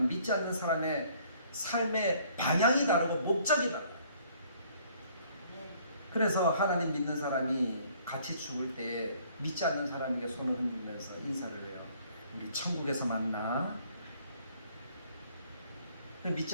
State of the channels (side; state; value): both; inverted; correlation -0.60